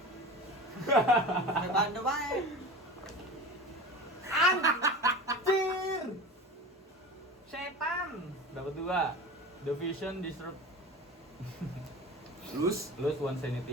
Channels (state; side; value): normal; both; correlation 0.33